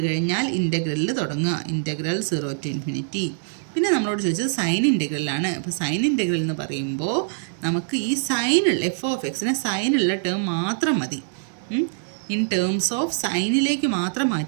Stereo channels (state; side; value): silent; left; digital silence